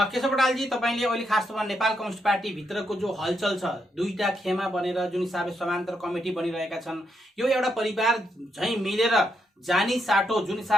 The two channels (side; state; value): both; normal; correlation 0.80